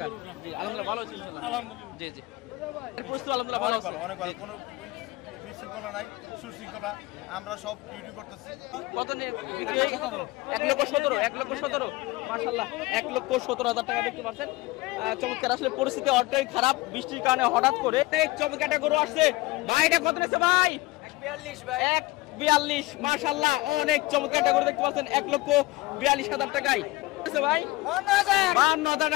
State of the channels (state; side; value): quieter; right; 21.0 dB